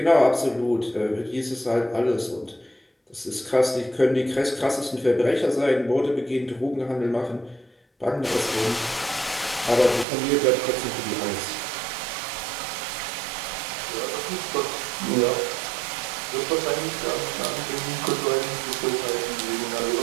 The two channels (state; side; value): drops out; left; at 10.1 s